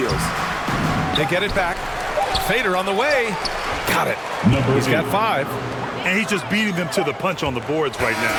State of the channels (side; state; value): both; identical; correlation 1.00